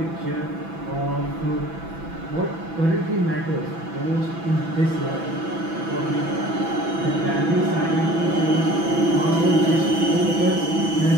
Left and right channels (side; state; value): left; late; 6.0 ms